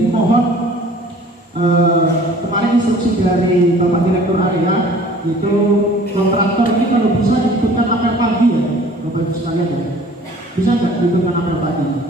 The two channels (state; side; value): normal; both; correlation 0.50